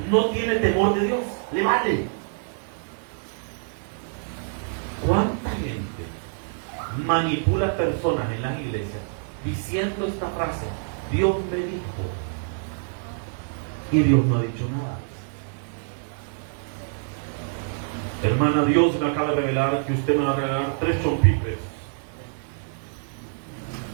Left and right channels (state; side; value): silent; left; digital silence